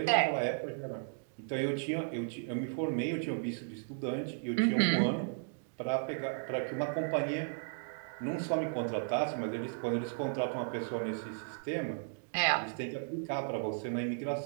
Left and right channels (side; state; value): left; silent; digital silence